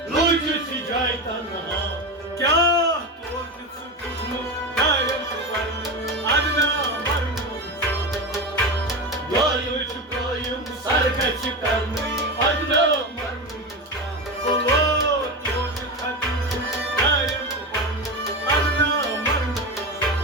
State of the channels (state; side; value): normal; both; correlation 0.20